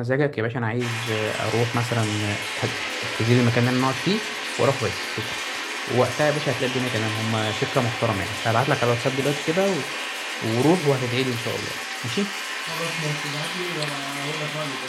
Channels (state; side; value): identical; both; correlation 1.00